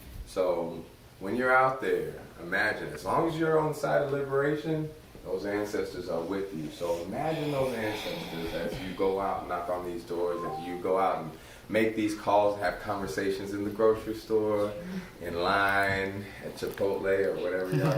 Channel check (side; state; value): both; identical; correlation 1.00